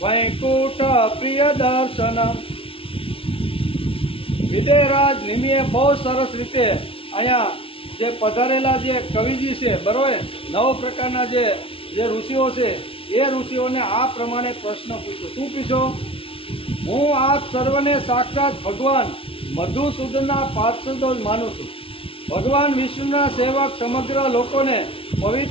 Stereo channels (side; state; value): right; late; 0.26 ms